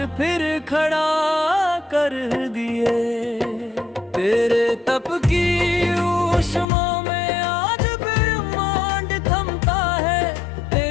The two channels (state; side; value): drops out; right; at 6.7 s